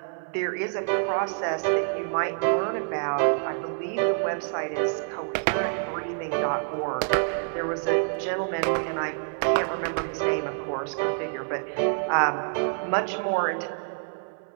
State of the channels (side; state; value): left; silent; 60 dB below the other